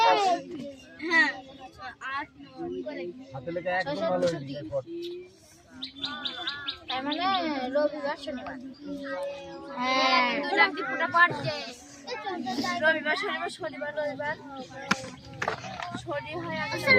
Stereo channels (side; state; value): both; identical; correlation 1.00